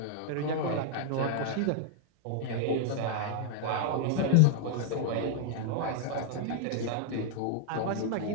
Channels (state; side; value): different; both; correlation 0.00